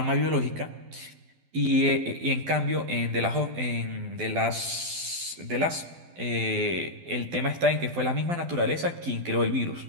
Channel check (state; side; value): late; left; 12 ms